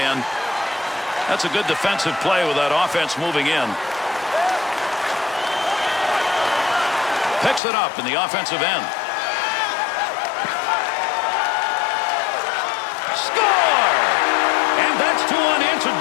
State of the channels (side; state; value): right; drops out; at 7.6 s